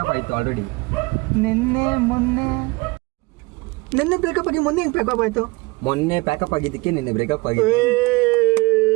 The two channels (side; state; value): left; quieter; 24.7 dB